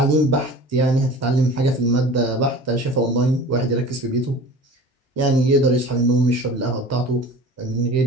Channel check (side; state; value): both; normal; correlation 0.39